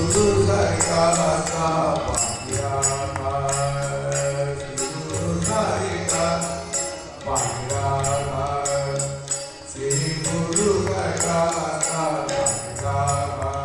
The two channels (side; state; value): both; identical; correlation 1.00